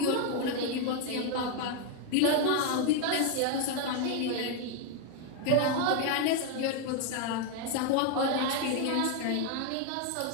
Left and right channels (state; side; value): different; both; correlation 0.01